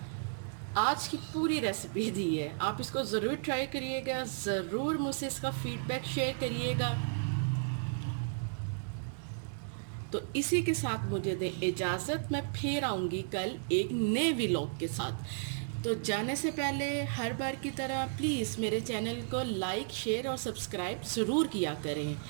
आज की पूरी रेसिपी दी है, आप इसको ज़रूर ट्राई करिएगा, ज़रूर मुझसे इसका फीडबैक शेयर करिएगा। तो इसी के साथ मुझे दें इजाज़त, मैं फिर आऊँगी कल एक नए व्लॉग के साथ। तो जाने से पहले हर बार की तरह प्लीज़ मेरे चैनल को लाइक, शेयर और सब्सक्राइब ज़रूर किया करें।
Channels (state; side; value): silent; left; digital silence